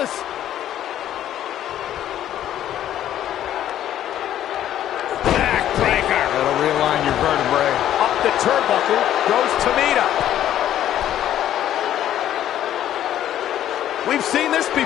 Backbreaker. That'll realign your vertebrae. Up the turnbuckle goes Tamina. We've seen this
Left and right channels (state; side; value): quieter; right; 11.6 dB